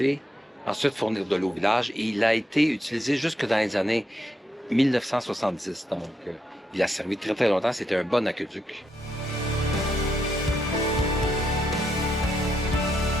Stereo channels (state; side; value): normal; both; correlation 0.80